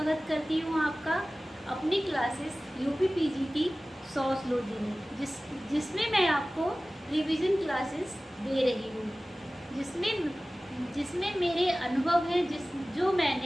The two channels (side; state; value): both; normal; correlation 0.97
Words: करती हूँ आपका अपनी क्लासेस यूपी पीजीटी सोशलॉजी में, जिसमें मैं आपको रिवीजन क्लासेस दे रही हूँ, जिसमें मेरे अनुभव हैं जो